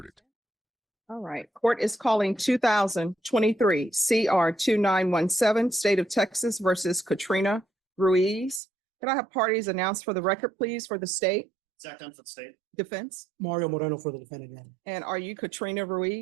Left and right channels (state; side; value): drops out; left; at 8.6 s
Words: All right. Court is calling 2023 CR 2917, State of Texas versus Katrina Ruiz. Can I have parties announced for the record, please, for the state? Zach Dunn for the state. Defense. Mario Moreno for the defendant. And are you Katrina